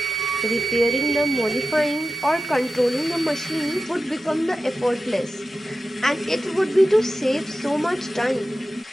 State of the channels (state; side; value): normal; both; correlation 0.93